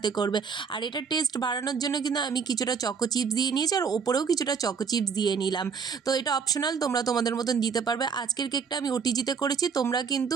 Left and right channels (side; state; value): left; quieter; 6.0 dB